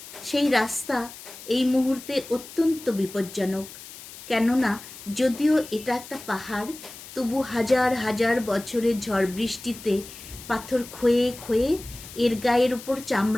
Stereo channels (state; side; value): noise; left; hiss, 15 dB below the sound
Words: সেই রাস্তা এই মুহূর্তে অত্যন্ত বিপজ্জনক। কেননা যদিও এটা একটা পাহাড়, তবু হাজার হাজার বছরের ঝড় বৃষ্টিতে পাথর ক্ষয়ে ক্ষয়ে এর গায়ের উপর